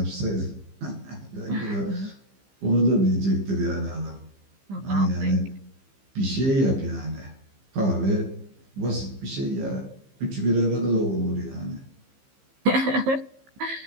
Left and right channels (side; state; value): left; late; 15 ms